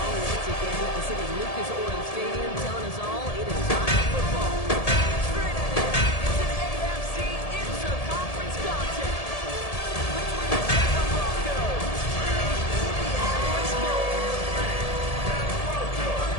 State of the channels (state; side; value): late; right; 1.7 ms